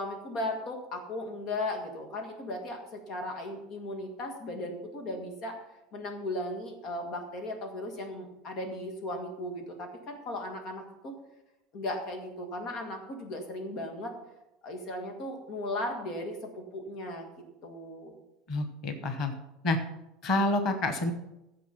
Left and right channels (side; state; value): both; normal; correlation 0.32